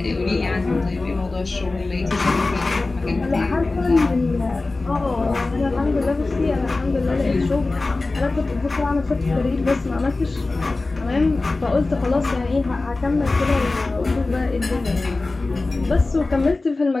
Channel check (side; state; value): right; quieter; 3.3 dB